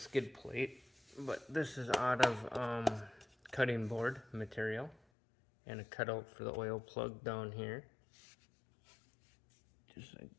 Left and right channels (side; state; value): right; drops out; at 5.0 s